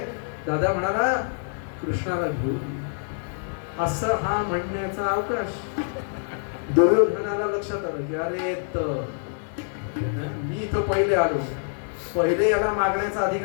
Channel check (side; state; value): right; silent; digital silence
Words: दादा म्हणाला कृष्णाला घेऊन ये. असं हा म्हणण्याचा अवकाश. दुर्योधनाला लक्षात आलं की अरे मी इथं पहिले आलो, पहिले याला मागण्याचा